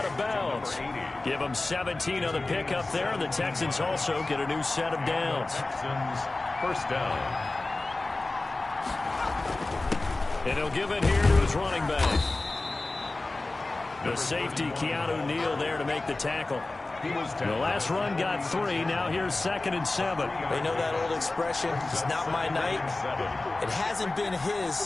of bounds. Give him 17 on the pickup there, and the Texans also get a new set of downs. Texans, 1st down. And he'll give it here to his running back. The safety, Keanu Neal, there to make the tackle. The last run got 3. Now here's 2nd and 7. They know that old expression, it's not my night. It hasn't been his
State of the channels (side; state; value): right; quieter; 3.1 dB